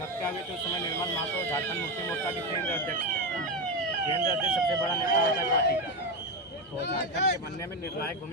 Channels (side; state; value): both; normal; correlation 0.12